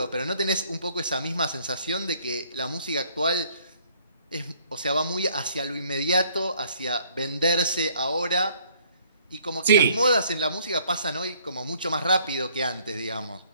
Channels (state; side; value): inverted; both; correlation -0.62